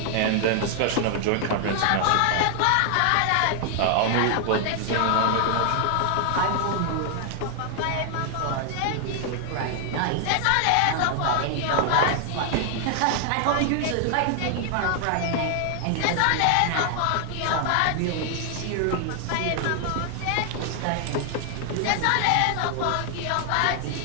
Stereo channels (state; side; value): different; both; correlation 0.00